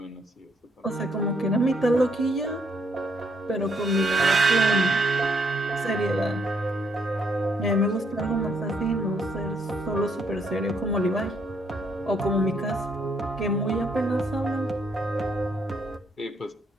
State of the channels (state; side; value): normal; both; correlation 0.72